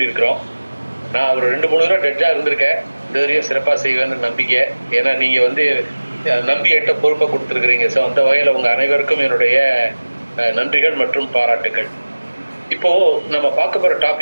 நான் ஒரு 2-3 தடவை டெட்ஜா இருந்திருக்கேன். இந்த வரையும் சிறப்பாக செய்வேன்னு நம்பிக்கை. ஏன்னா நீங்க நம்பி என்கிட்ட பொறுப்பை கொடுத்துருக்குறீங்க. ஸோ அந்த வகையில் உங்க அனைவருக்கும் என்னுடைய நன்றிகள் மற்றும் பாராட்டுகள். இப்போ நம்ம பார்க்க போற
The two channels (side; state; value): both; inverted; correlation -1.00